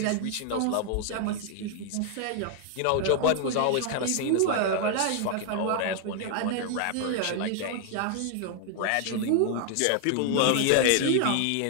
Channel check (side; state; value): both; different; correlation 0.00